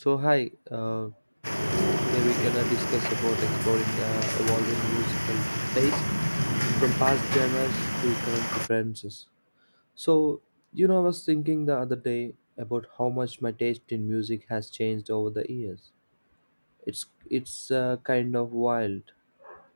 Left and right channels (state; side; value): inverted; both; correlation -1.00